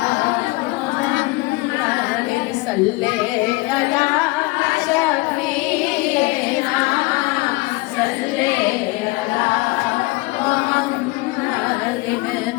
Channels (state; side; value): quieter; right; 23.1 dB